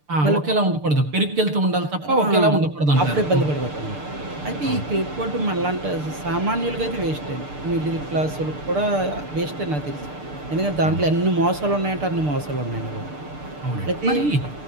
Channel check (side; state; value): left; late; 6.7 ms